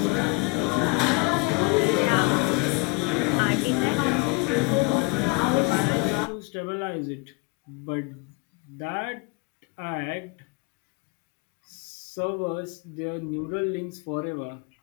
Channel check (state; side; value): quieter; right; 28.5 dB